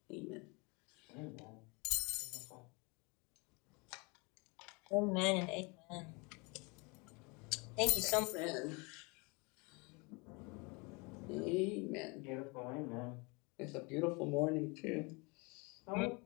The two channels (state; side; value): quieter; right; 28.9 dB